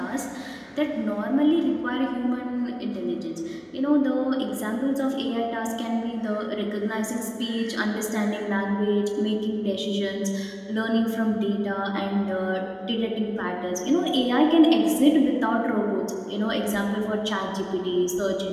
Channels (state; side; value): identical; both; correlation 1.00